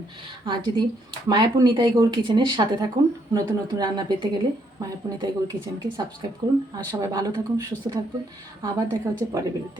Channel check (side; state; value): both; normal; correlation 0.72